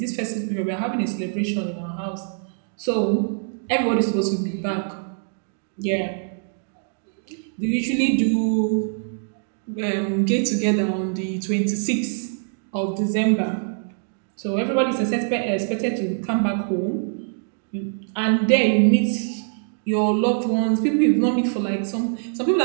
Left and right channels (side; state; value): left; silent; 63 dB below the other